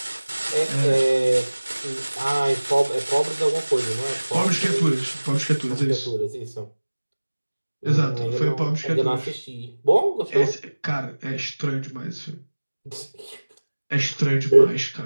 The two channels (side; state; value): both; inverted; correlation -1.00